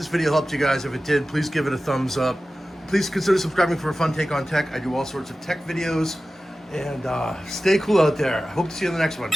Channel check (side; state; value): both; normal; correlation 0.95